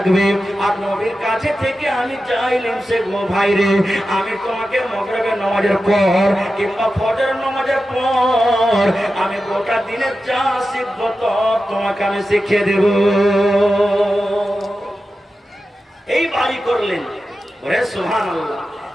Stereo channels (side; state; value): both; normal; correlation 0.92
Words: আর নবীর কাছে থেকে আমি যা ইলম শিখবো ভাই রে, আমি তোমাকে মাগরিবের নামাজের পর কিংবা ফজরের নামাজের পর আমি গোটা দিনের যা শিখবো তো তোমাকে আমি শিখিয়ে দেব। এই বাড়ি করলেন, ওরে সুবহানাল্লাহ।